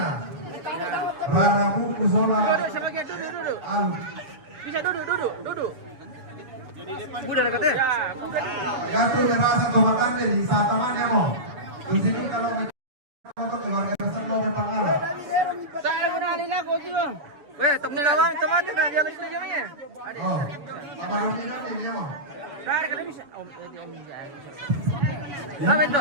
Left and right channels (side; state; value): left; late; 7.0 ms